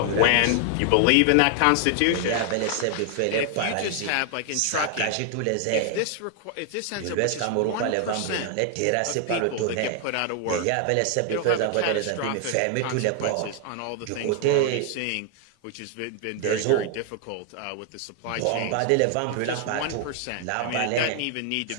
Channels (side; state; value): both; different; correlation 0.00